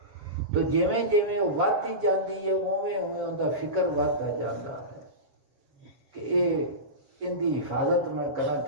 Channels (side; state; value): left; late; 7.3 ms